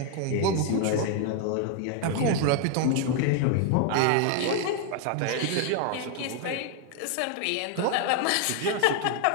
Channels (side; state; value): both; different; correlation 0.00